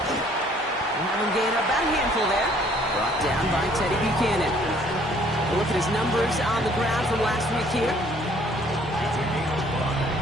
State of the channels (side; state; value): both; normal; correlation 0.60